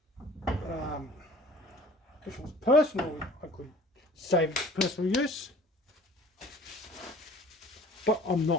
If it was personal, I could save it for personal use, but I'm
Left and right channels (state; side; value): normal; both; correlation 0.48